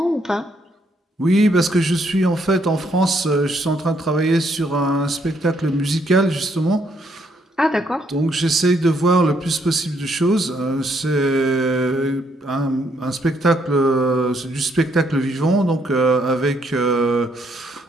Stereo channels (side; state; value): both; normal; correlation 0.72